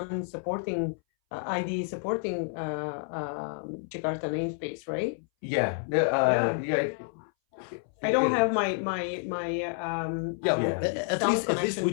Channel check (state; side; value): silent; right; 58 dB below the other